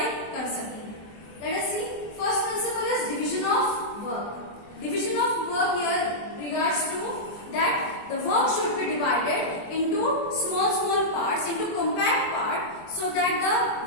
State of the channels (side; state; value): right; late; 24 ms